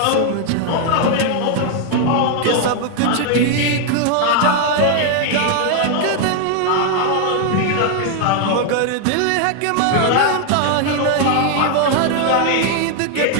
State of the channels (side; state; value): both; different; correlation 0.00